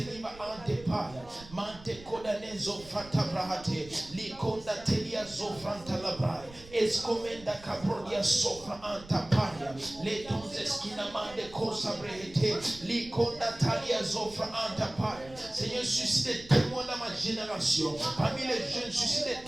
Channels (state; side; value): noise; right; rumble, 19 dB below the sound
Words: lima ante paia. Mante kodanezo frata brahate. Likonda telia zofranta labrai. Escomenda cabrodia sopra anta paia. Letonze skinamande cosa brehete. Likonda talia zofra anta paia. Seigneur, suscite des témoins dans ma génération. Parmi les jeunes, suscite